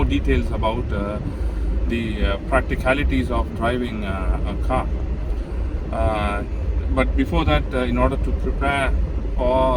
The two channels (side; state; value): both; identical; correlation 1.00